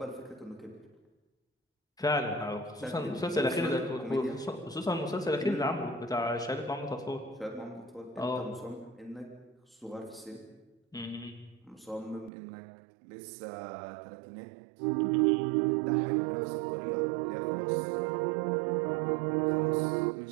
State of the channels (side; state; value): left; drops out; at 12.3 s